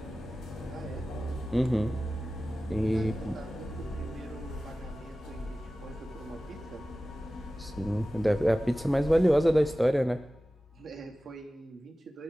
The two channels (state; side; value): normal; both; correlation 0.96